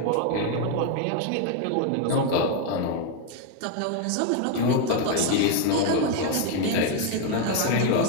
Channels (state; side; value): different; both; correlation 0.01